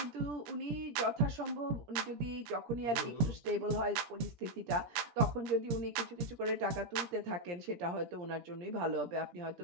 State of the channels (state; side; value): late; left; 18 ms